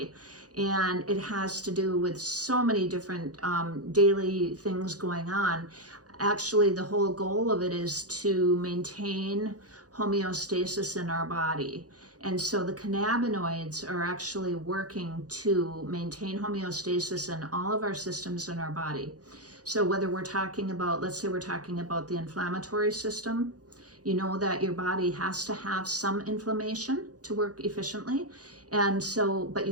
And it has to do with so many different daily things going on. Actually, the whole goal of it is to maintain homeostasis in our body. And so the cannabinoids are actually working to maintain homeostasis in all of our systems in our body. So whether we're talking about, let's say we're talking about the inflammatory system, you know that your body has to have some inflammation to work efficiently. And so, but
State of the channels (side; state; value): left; late; 0.67 ms